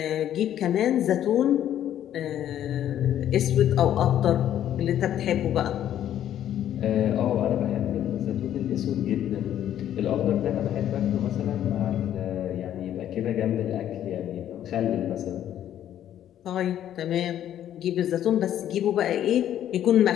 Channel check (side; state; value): right; quieter; 11.1 dB